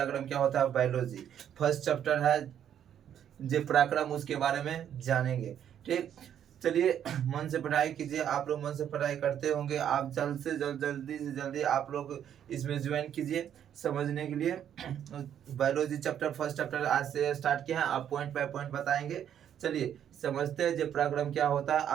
क्या होता है। बायोलॉजी फर्स्ट चैप्टर है जे पराक्रम, उसके बारे में जानेंगे। ठीक, चलिए मन से पढ़ाई कीजिए। आप लोग मन से पढ़ाई करते होंगे, आप जल्द से जल्द जल्दी से जल्दी आप लोग इसमें ज्वाइन कीजिए समझने के लिए। बायोलॉजी चैप्टर फर्स्ट चैप्टर आज से स्टार्ट किया है, आप पॉइंट बाय पॉइंट बताएंगे। चलिए समझते हैं जे पराक्रम क्या होता है,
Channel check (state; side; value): quieter; left; 9.6 dB